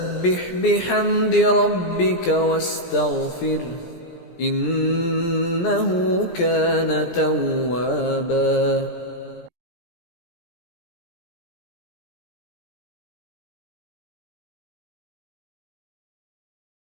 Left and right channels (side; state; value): right; late; 17 ms